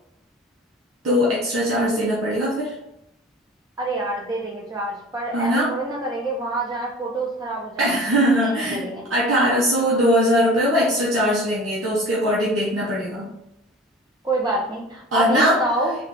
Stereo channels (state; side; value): normal; both; correlation 0.40